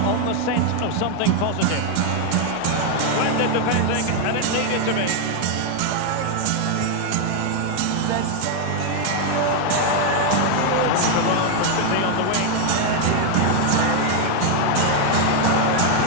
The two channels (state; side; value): different; both; correlation 0.01